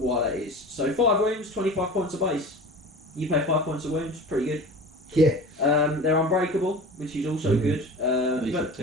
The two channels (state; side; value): normal; both; correlation 0.36